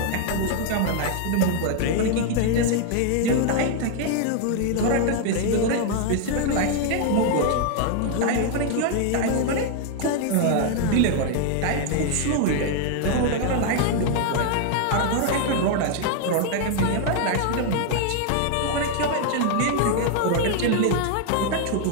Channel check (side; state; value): both; different; correlation 0.00